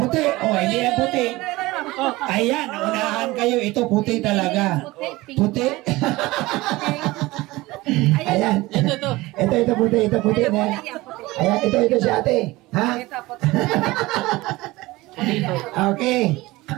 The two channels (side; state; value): left; quieter; 20.0 dB